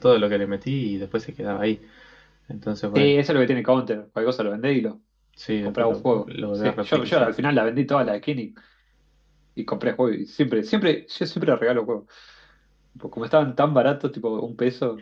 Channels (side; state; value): both; identical; correlation 1.00